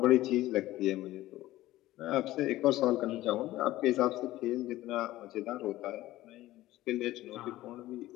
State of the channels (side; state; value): right; quieter; 16.1 dB